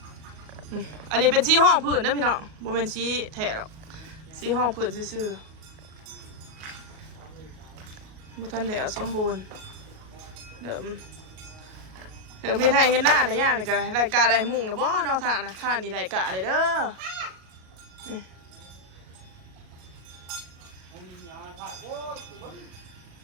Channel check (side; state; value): left; late; 38 ms